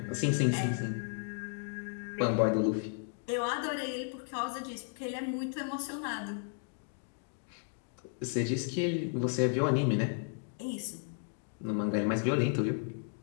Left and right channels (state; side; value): silent; right; 55 dB below the other